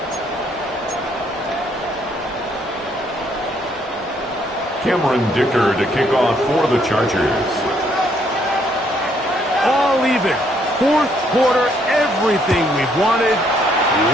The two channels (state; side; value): normal; both; correlation 0.69